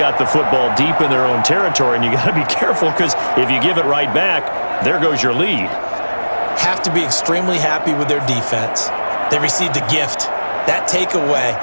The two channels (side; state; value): both; inverted; correlation -1.00